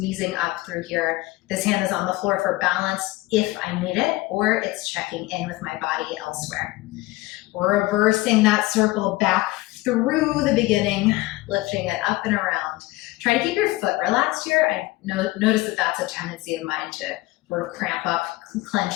up through here. This hand is on the floor for balance if I need it, or it's checking in with my body elsewhere. Reversing that circle back through the beginning, lifting it up and around. Try to keep your foot relaxed here. I notice that that's a tendency of mine to sort of cramp up,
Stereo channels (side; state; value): right; quieter; 19.6 dB